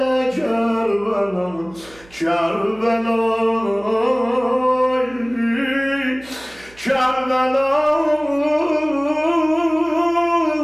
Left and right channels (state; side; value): noise; right; hum, 25 dB below the sound